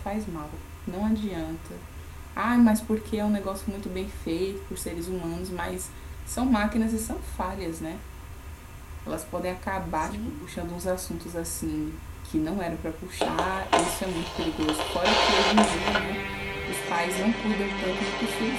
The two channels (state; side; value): identical; both; correlation 1.00